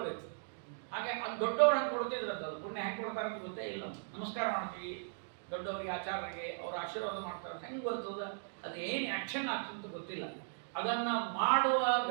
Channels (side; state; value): left; silent; digital silence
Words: ಹಾಗೆ ಅದು ದೊಡ್ಡವ್ರು ಹಂಗೆ ಕೊಡ್ತಿದ್ರು, ಅದು ಪುಣ್ಯ ಹೆಂಗೆ ಕೊಡ್ತಾರೆ ಅಂತ ಗೊತ್ತೇ ಇಲ್ಲ. ನಮಸ್ಕಾರ ಮಾಡ್ತೀವಿ ದೊಡ್ಡವರಿಗೆ, ಆಚಾರ್ಯರಿಗೆ, ಅವ್ರ ಆಶೀರ್ವಾದ ಮಾಡ್ತಾರೆ, ಹೆಂಗೆ ಬರ್ತದೆ, ಅದು ಏನು ಆ್ಯಕ್ಷನ್ ಆಗ್ತದೆ ಗೊತ್ತಿಲ್ಲ. ಅದನ್ನ ಮಾಡುವ